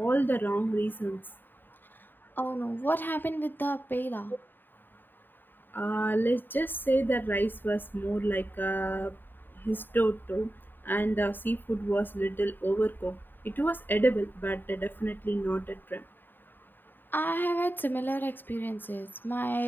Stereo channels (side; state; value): right; late; 0.093 ms